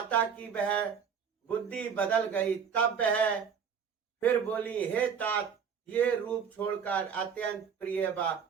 की वह बुद्धि बदल गई। तब वह फिर बोली, हे तात ये रूप छोड़कर अत्यंत प्रिय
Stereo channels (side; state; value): left; quieter; 7.0 dB